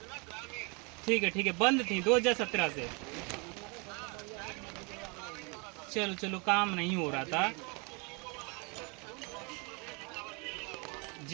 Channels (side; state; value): left; quieter; 31.4 dB